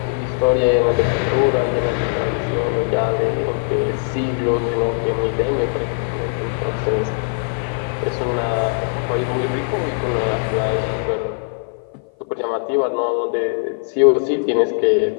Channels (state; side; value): silent; right; 56 dB below the other